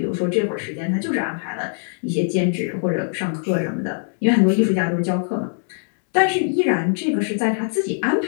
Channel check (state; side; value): silent; right; 65 dB below the other